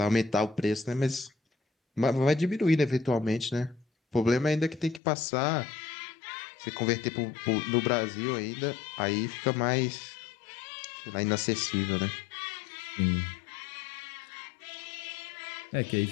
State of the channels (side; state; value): right; drops out; at 5.0 s